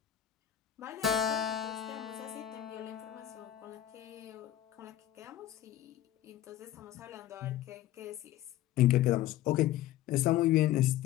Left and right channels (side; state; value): right; quieter; 12.6 dB